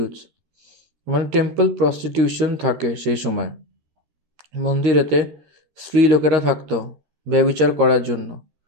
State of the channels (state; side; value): late; left; 13 ms